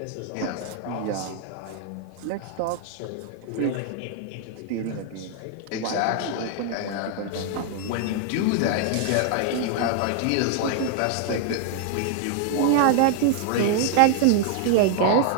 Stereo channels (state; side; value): different; both; correlation 0.00